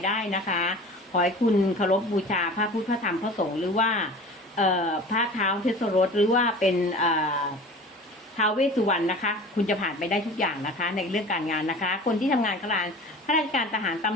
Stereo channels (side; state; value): both; normal; correlation 0.40